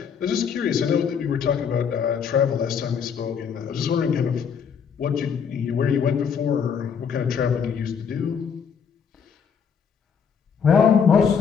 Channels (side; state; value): right; quieter; 6.9 dB